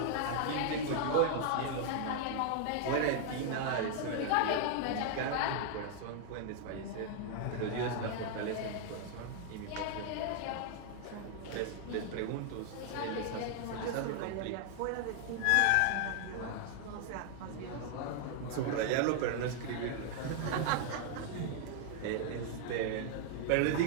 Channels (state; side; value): different; both; correlation 0.00